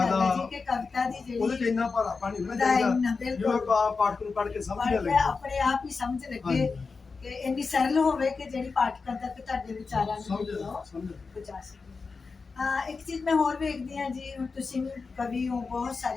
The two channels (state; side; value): quieter; right; 4.6 dB